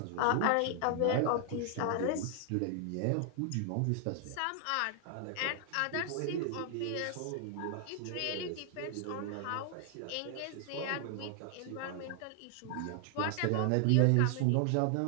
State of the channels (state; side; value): different; both; correlation 0.00